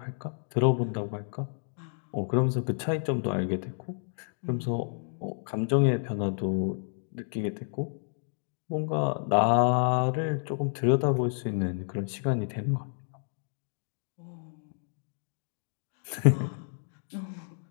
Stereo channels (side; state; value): right; silent; digital silence